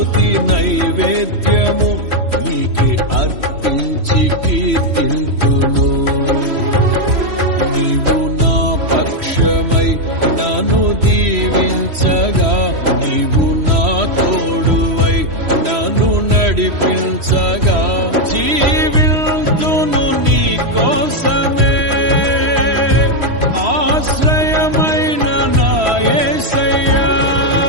నైవేద్యము నీకే అర్పించి కీర్తింతును. నీవు నా పక్షమై నన్ను దీవించగా, నీవు నా తోడువై నన్ను నడిపించగా, జీవింతును నీ కోసమే ఆశ్రయమైన నా యేసయ్యా.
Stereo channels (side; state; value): left; late; 3.1 ms